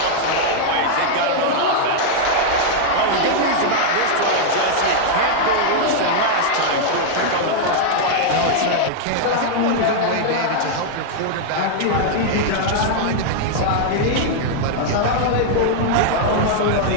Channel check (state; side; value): different; both; correlation -0.01